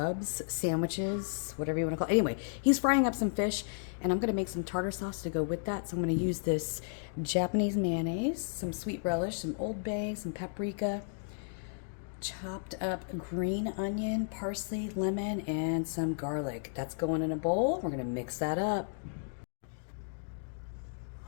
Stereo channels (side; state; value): right; silent; digital silence